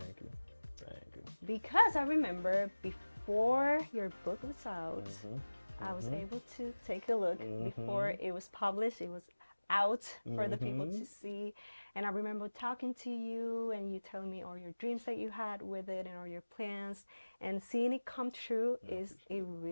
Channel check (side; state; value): both; inverted; correlation -1.00